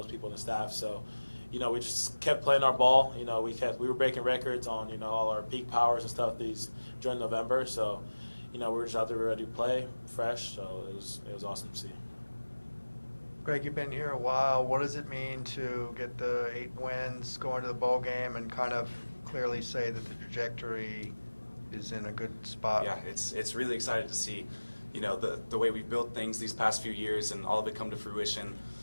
people in the staff. So, we just kept playing our ball. We were breaking records on, all our peak powers and stuff during November. So, we were just out there ready to play, fresh. So it was awesome to see. Greg, you've been here a while. What does it mean to get the 8 wins, go into the bowl game, and kind of clearly say that the trajectory is in a good spot? Yeah, it's really exciting to see, the way we've built things these past few years and all of it come to fruition.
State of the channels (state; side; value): inverted; both; correlation -1.00